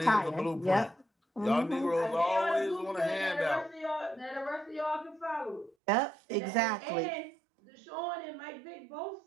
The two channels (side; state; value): left; drops out; at 5.8 s